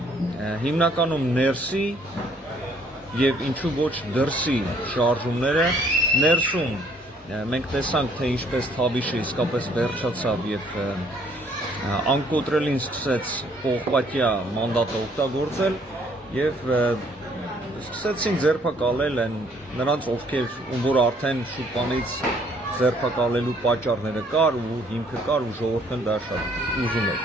հիմնականում ներսի եւ ինչու ոչ դրսի շարժումները, ներսում մենք տեսանք, թե ինչպես Թավիշը իսկապես վերջացավ եւ անկոտրելին սկսեց պողպատյա մանդատը օգտագործել եւ սկսեցին ձերբակալել են նրանց, որ արդեն շուտ բանից ձերբակալելու պատճառները կար ու հիմքը կար ու ժողովուրդն դա շատ ուզում էր։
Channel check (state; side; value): normal; both; correlation 0.63